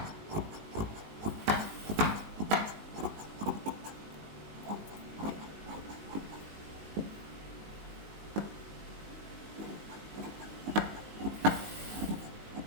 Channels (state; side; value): late; left; 19 ms